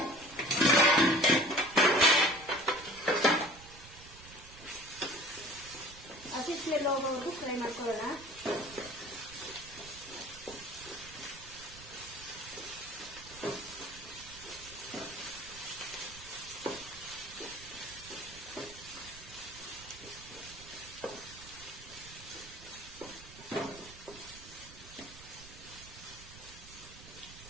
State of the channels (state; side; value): noise; right; rumble, 18 dB below the sound